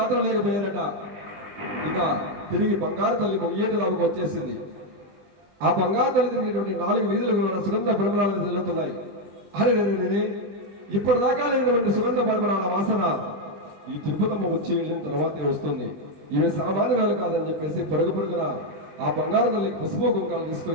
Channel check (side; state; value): left; late; 20 ms